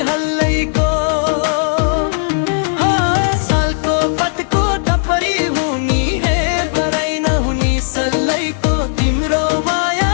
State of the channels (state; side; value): silent; right; digital silence